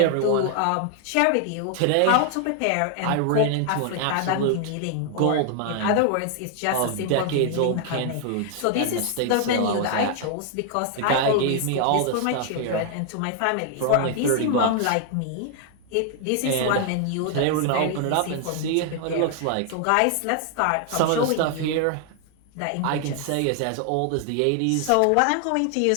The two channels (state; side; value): different; both; correlation 0.00